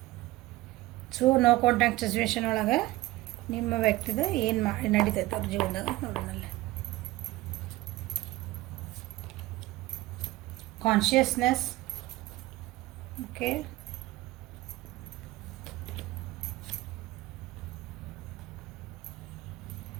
ಸೊ ನೋ ಕಾಂಟ್ಯಾಕ್ಟ್ ಸಿಚುವೇಶನ್ ಒಳಗೆ ನಿಮ್ಮ ವ್ಯಕ್ತಿದ ಏನು ನಡೀತೈತೆ ಅವ್ರ ಜೀವನದಾಗ ನೋಡೋಣಲ್ಲ. ಕಾನ್ಷಿಯಸ್ನೆಸ್. Okay,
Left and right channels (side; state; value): left; quieter; 18.5 dB